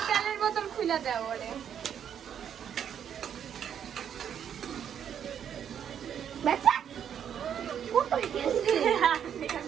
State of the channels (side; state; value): left; quieter; 8.8 dB